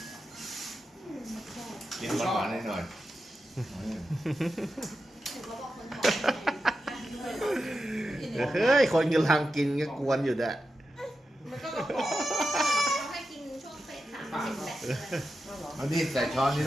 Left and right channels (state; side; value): normal; both; correlation 0.90